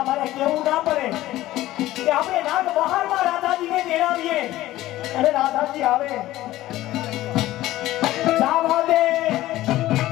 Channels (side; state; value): right; quieter; 15.7 dB